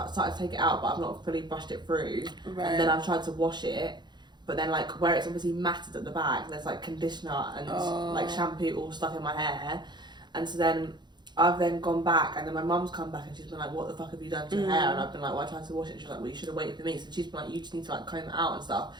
to take it out, but I've not fully brushed it through. Right. And then I've tried to wash it, but then like where it's obviously matted at the back, there's like conditioner and like shampoo all stuck in my hair. And so then I've then gone back, and then my mum's come back and she's been like, "What the fuck have you done to your hair?" And I've been like, "Well, I tried to wash it." And she's like, "Well, you should have waited for me." So she's been like, "You just need to like comb it out and stuff."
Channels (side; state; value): left; late; 0.21 ms